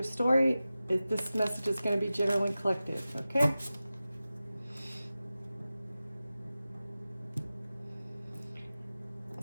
story. This message is going to be general and collective, okay?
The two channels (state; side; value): inverted; both; correlation -0.95